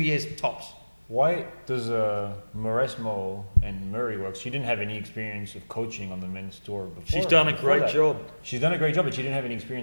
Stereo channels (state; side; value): inverted; both; correlation -1.00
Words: tops. Why does Mauresmo and Murray work? She didn't have any experience of coaching on the men's tour before. She's done a great job. She's done a great job, but she didn't have any